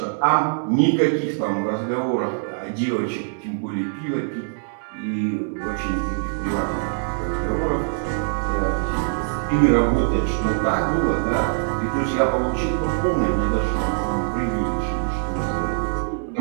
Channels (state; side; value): silent; left; 63 dB below the other